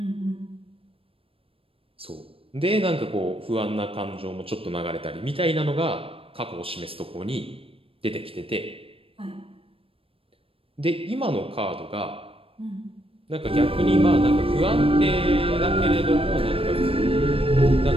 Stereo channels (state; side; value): late; left; 0.27 ms